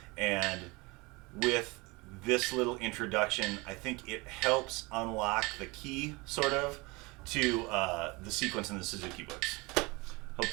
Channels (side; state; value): left; quieter; 25.2 dB